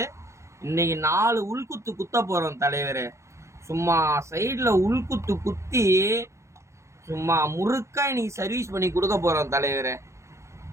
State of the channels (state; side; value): late; left; 0.14 ms